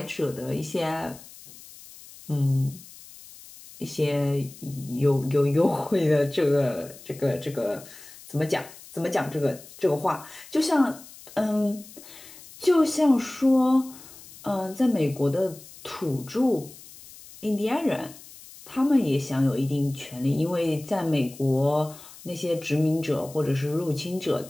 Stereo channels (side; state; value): left; noise; hiss, 19 dB below the sound